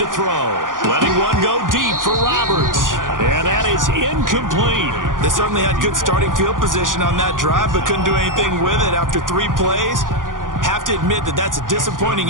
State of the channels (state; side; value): late; left; 0.89 ms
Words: throw. Letting one go deep for Roberts. And that is incomplete. They certainly had good starting field position on that drive, but couldn't do anything with it after 3 plays. Have to admit that that's a disappointing